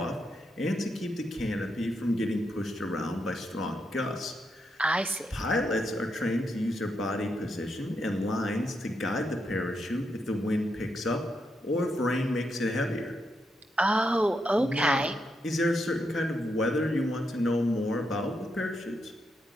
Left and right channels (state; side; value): normal; both; correlation 0.82